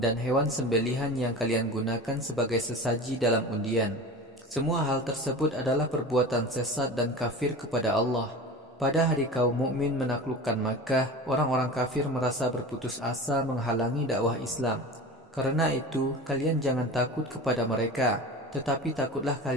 hewan sembelihan yang kalian gunakan sebagai sesaji dalam undian. Semua hal tersebut adalah perbuatan sesat dan kafir kepada Allah. Pada hari kaum mukmin menaklukkan Makkah, orang-orang kafir merasa berputus asa menghalangi dakwah Islam. Karena itu, kalian jangan takut kepada mereka, tetapi takutlah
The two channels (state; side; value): normal; both; correlation 0.33